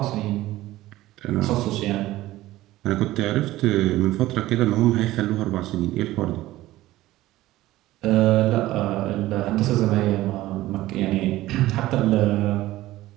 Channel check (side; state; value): left; quieter; 16.3 dB